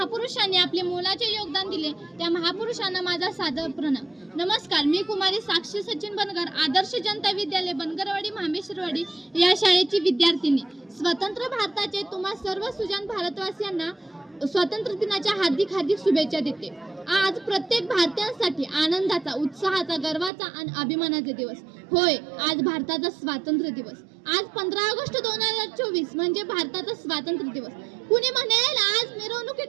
आपले मोलाचे योगदान दिले त्या महापुरुषांना माझा सादर प्रणाम. नमस्कार, मी कुमारी साक्षी सचिन बनगर, आदर्श जनता विद्यालय बनगरवाडी मामेश्वरवाडी या शाळेची विद्यार्थिनी. स्वतंत्र भारताचे तुम्हा सर्व सुजाण भारतवासियांना स्वातंत्र्य दिनाच्या हार्दिक हार्दिक शुभेच्छा देते. आज प्रत्येक भारतीयांसाठी आनंदाचा, उत्साहाचा, गर्वाचा आणि अभिमानाचा दिवस. होय, आज भारताचा स्वातंत्र्य दिवस. आज 15 ऑगस्ट 2024 म्हणजे भारताचा स्वातंत्र्य दिवस. कुणी म्हणेल आज मिरवणुकी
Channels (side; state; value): left; drops out; at 20.3 s